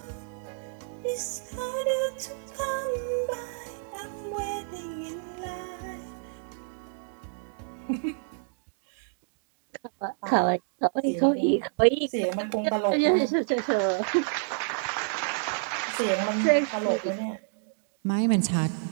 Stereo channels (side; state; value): left; silent; digital silence